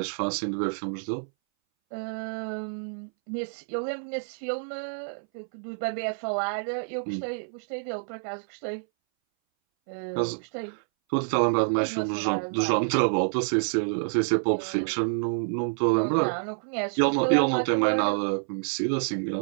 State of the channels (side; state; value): left; silent; 60 dB below the other